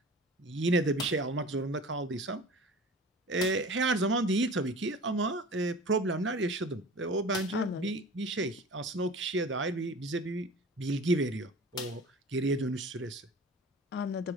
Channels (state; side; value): normal; both; correlation 0.40